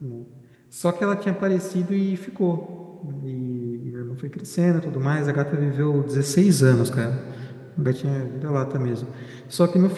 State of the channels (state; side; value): identical; both; correlation 1.00